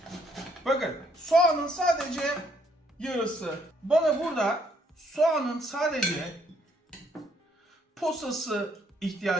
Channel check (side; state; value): both; normal; correlation 0.68